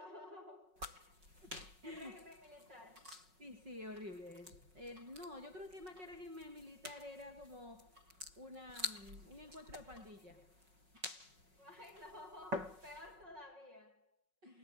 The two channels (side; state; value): left; late; 5.4 ms